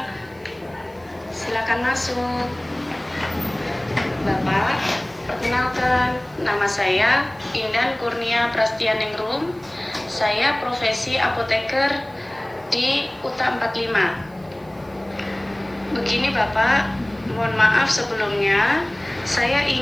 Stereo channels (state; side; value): noise; right; hiss, 30 dB below the sound